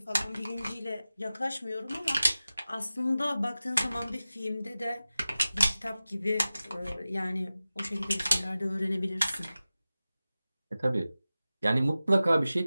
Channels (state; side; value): inverted; both; correlation -0.96